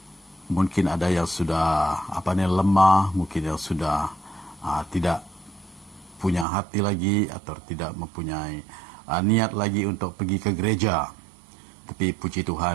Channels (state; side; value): drops out; left; at 6.5 s